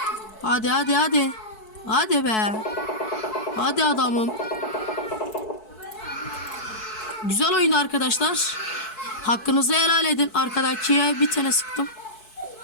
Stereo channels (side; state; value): right; late; 4.6 ms